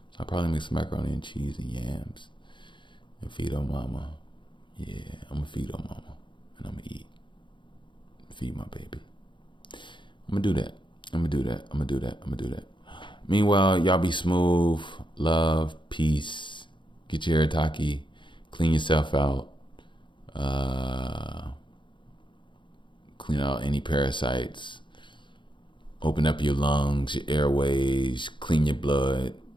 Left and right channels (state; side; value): late; right; 0.23 ms